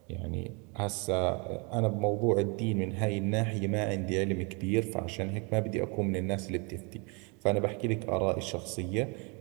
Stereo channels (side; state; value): left; quieter; 32.2 dB